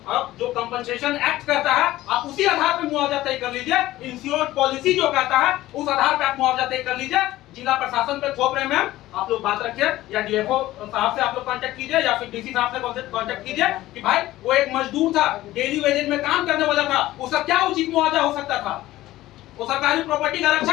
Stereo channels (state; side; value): quieter; right; 16.0 dB